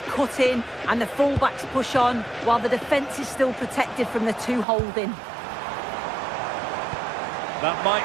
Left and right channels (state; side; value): drops out; left; at 4.7 s